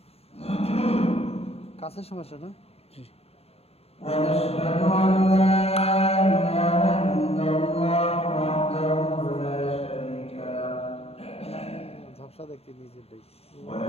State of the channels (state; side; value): late; right; 0.29 ms